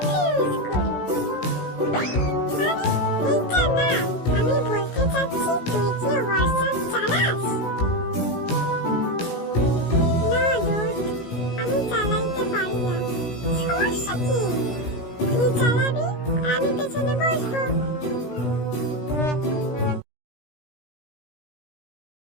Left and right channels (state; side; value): late; right; 17 ms